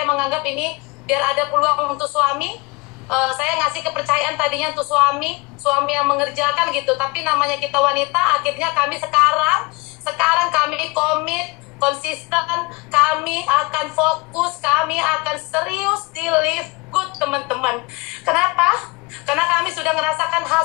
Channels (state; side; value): quieter; right; 26.0 dB